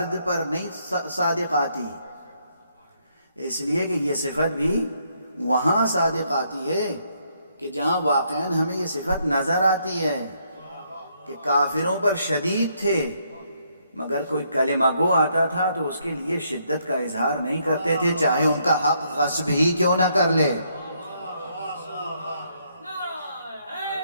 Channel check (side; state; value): both; inverted; correlation -0.73